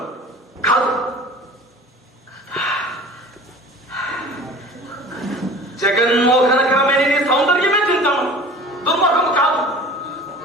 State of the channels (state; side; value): normal; both; correlation 0.42